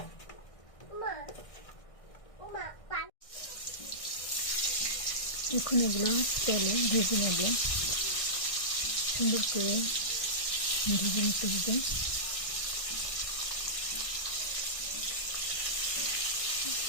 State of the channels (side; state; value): right; late; 1.6 ms